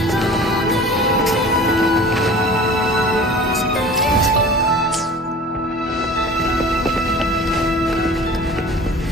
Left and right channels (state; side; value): normal; both; correlation 0.42